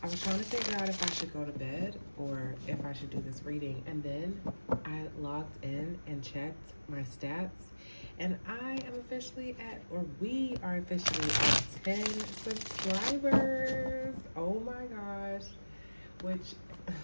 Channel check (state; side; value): inverted; both; correlation -1.00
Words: was trying to figure out if I should go to bed or if I should do this reading. And then I logged in and checked my stats. And I am officially we are officially at 10 subscribers. Oh my gosh. Which,